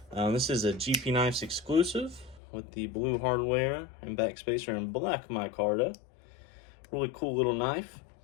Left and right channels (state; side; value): drops out; right; at 2.4 s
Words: This is a GP Knives exclusive with the blue hardware and backspacer and black micarta. Really cool little knife.